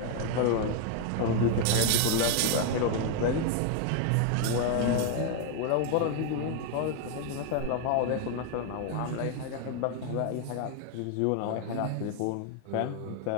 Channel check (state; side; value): different; both; correlation 0.01